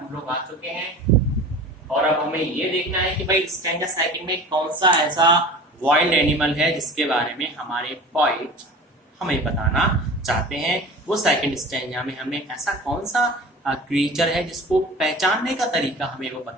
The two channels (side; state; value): both; normal; correlation 0.38